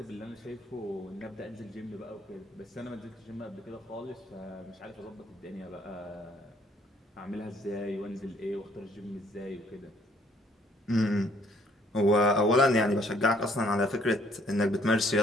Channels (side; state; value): both; normal; correlation 0.63